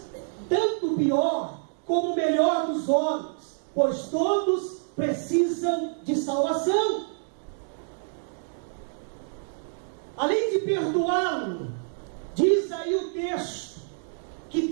tanto o pior como o melhor dos homens, pois todos precisam de salvação. Além de perdoá-lo, diz aí o texto, que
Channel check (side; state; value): left; silent; digital silence